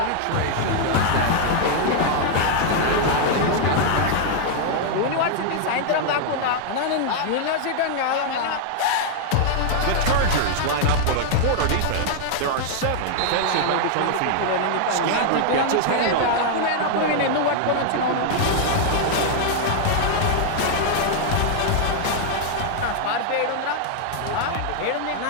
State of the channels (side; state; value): both; different; correlation -0.01